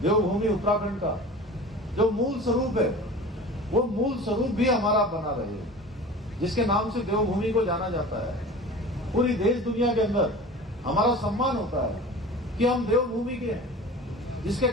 देवभूमि उत्तराखंड का जो मूल स्वरूप है, वो मूल स्वरूप भी हमारा बना रहे, जिसके नाम से देवभूमि को जाना जाता है। पूरी देश दुनिया के अंदर हमारा सम्मान होता है कि हम देवभूमि के हैं, जिसके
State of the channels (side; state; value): both; normal; correlation 0.38